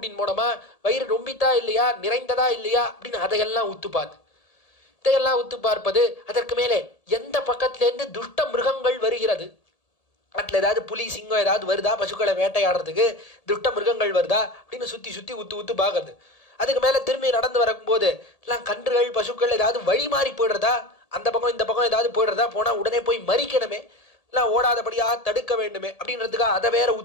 போனோமா, வயிறு ரொம்பித்தா இல்லையா, நிறைந்ததா இல்லையா அப்படின்னு அதையெல்லாம் உத்து பார்த்து இதையெல்லாம் உத்து பார்ப்பது. அதற்கு மேலே எந்த பக்கத்திலேருந்து துஷ்ட மிருகங்கள் வருகிறது, காட்டில் ஏதாவது புலி சிங்கம் ஏதாவது வருதா, பசுக்களை வேட்டையாடுறதுக்கு துஷ்ட மிருகங்கள் வருதா அப்படின்னு சுற்றி உத்து பார்க்கறது. அதுக்கு மேலே திரும்பி நடந்து வரும்போது எல்லாம் கன்றுகள் பசுக்கள் ஏதாவது வழி மாறி போயிடுறதா, அந்த பக்கம் இந்த பக்கம் ஏதாவது போயிடுறதா, போனால் உடனே போய் மறிக்கணுமே, எல்லாம் ஓடாதபடியாக தடுக்க வேண்டுமே அப்படின்றதுக்காக அதை வேற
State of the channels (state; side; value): late; right; 1.7 ms